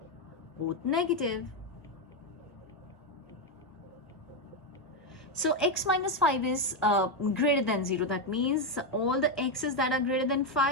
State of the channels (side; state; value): both; normal; correlation 0.06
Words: both negative. So x minus 5 is greater than 0. That means all the x's that are greater than